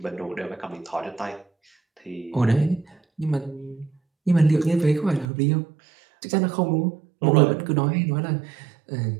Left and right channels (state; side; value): drops out; left; at 5.3 s